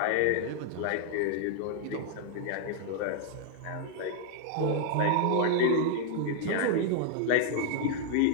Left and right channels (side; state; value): both; different; correlation 0.00